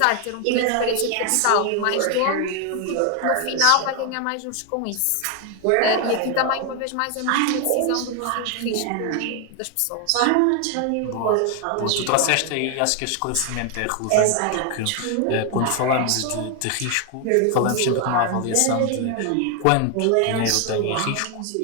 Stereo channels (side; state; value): both; different; correlation 0.00